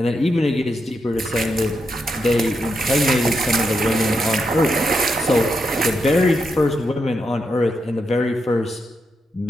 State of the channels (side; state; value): both; normal; correlation 0.83